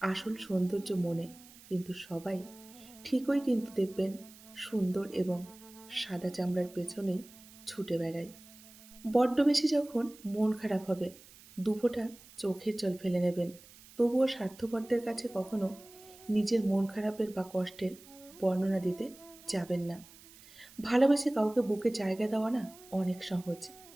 আসল সৌন্দর্য মনে, কিন্তু সবাই ঠিকই কিন্তু দেখবেন সুন্দর এবং সাদা চামড়ার পেছনেই ছুটে বেড়ায়। বড্ড বেশি যখন মন খারাপ হবে, দুফোঁটা চোখের জল ফেলে নেবেন। তবুও স্বার্থপরদের কাছে কখনো নিজের মন খারাপের বা কষ্টের বর্ণনা দিতে যাবেন না। ভালোবেসে কাউকে বুকে জায়গা দেওয়া না অনেক সহজ,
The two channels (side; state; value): right; noise; hiss, 22 dB below the sound